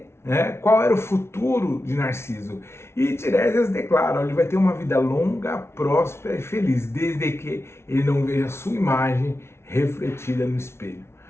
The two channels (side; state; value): right; late; 0.12 ms